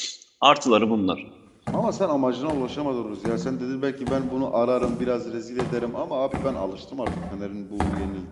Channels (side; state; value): both; identical; correlation 1.00